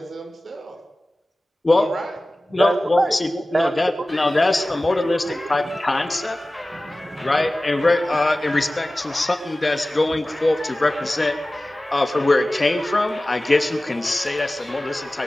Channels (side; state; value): both; normal; correlation 0.97